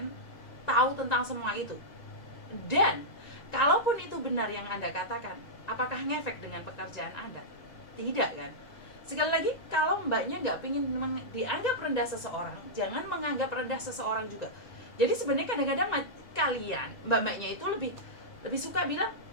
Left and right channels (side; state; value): right; late; 2.0 ms